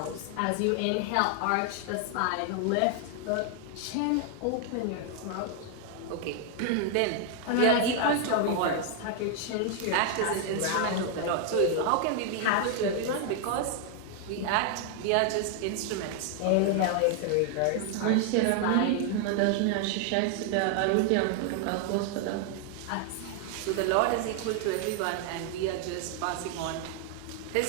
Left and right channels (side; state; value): both; different; correlation 0.00